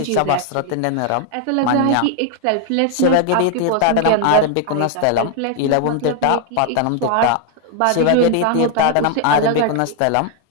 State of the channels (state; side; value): different; both; correlation 0.00